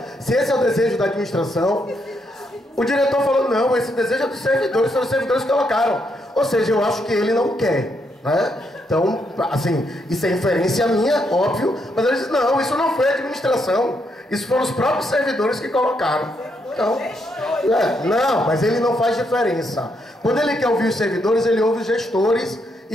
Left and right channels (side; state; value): both; normal; correlation 0.77